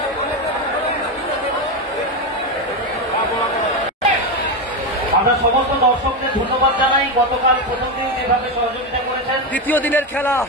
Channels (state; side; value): normal; both; correlation 0.12